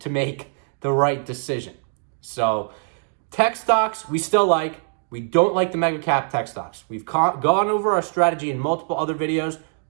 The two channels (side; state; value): left; silent; digital silence